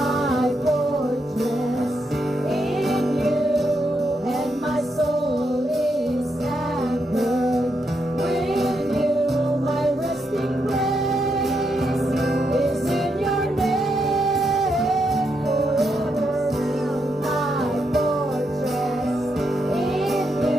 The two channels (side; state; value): both; normal; correlation 0.81